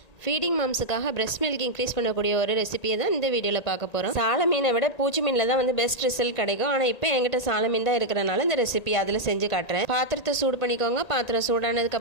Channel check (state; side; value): late; right; 1.8 ms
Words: feeding மாம்ஸுக்காக breast milk increase பண்ணக்கூடிய ஒரு ரெசிபியை தான் இந்த வீடியோவில் பார்க்க போகிறோம். சால மீனை விட பூச்சி மீனில் தான் பெஸ்ட் ரிசல்ட் கிடைக்கும். ஆனால் இப்போ என்கிட்ட சால மீன் தான் இருக்கிறனால இந்த ரெசிபி அதில் செஞ்சு காட்டுறேன். பாத்திரத்தை சூடு பண்ணிக்கோங்க. பாத்திரம்